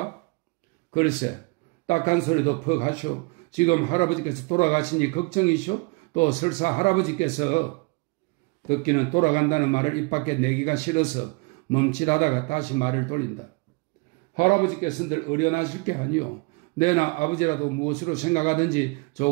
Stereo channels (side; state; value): left; quieter; 28.6 dB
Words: 글쎄, 딱한 소리도 퍽 하시오. 지금 할아버지께서 돌아가시니 걱정이시오? 또 설사 할아버지께서 듣기는 돌아간다는 말을 입 밖에 내기가 싫어서 멈칫하다가 다시 말을 돌린다. 할아버지께서는 늘 어련하실 게 아니오. 내나 아버지라도 무엇으로 생각하든지